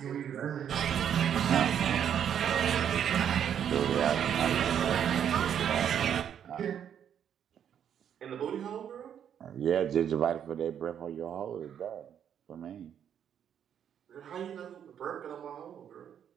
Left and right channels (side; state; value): left; quieter; 9.0 dB